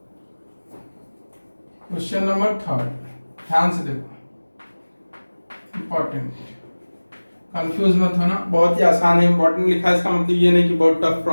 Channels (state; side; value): inverted; both; correlation -1.00